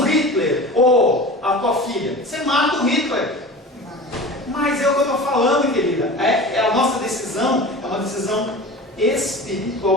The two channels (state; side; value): normal; both; correlation 0.35